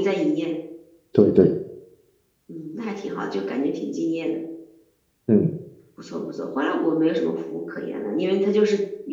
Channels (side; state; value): both; identical; correlation 1.00